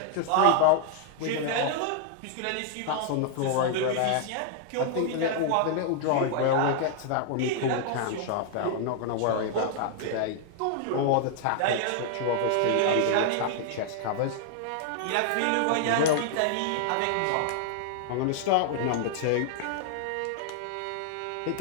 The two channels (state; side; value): different; both; correlation 0.00